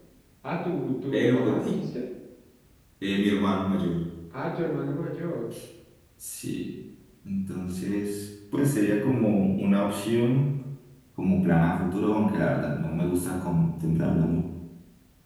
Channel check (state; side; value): identical; both; correlation 1.00